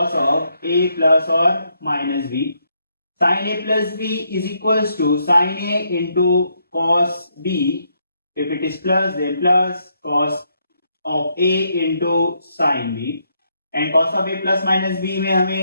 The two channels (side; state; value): both; inverted; correlation -0.76